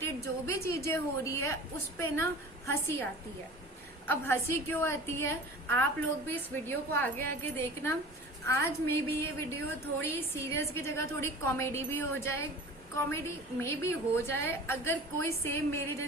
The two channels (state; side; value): normal; both; correlation 0.40